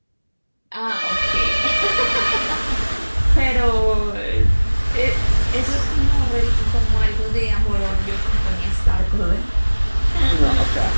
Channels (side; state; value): both; inverted; correlation -1.00